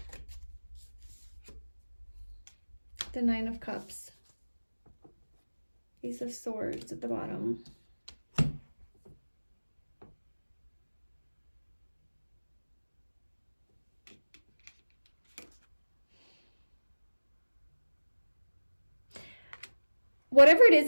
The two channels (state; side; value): inverted; both; correlation -1.00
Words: The Nine of Cups. Ace of Swords at the bottom. Whatever it is